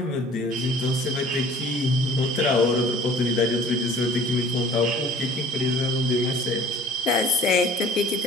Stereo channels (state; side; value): normal; both; correlation 0.49